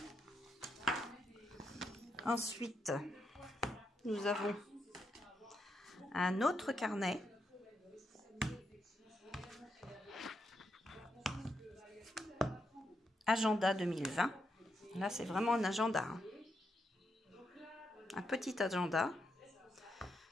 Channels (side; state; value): both; normal; correlation 0.82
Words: Ensuite, nous avons un autre carnet. Agenda 2020. Là, c'est vraiment un agenda. Hein. Un petit agenda